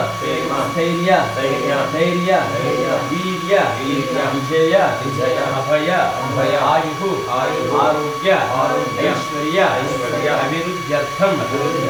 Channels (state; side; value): identical; both; correlation 1.00